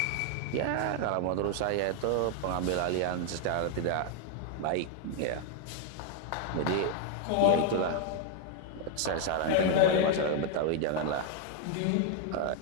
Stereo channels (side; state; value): both; different; correlation 0.00